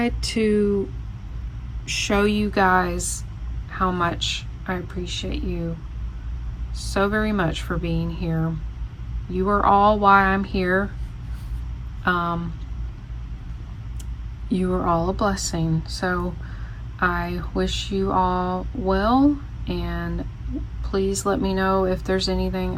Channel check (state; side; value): identical; both; correlation 1.00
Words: to show you guys how much I appreciate you so very much for being here. You are all why I'm here. You are all a blessing. So I wish you all well, and please let me know if there's anything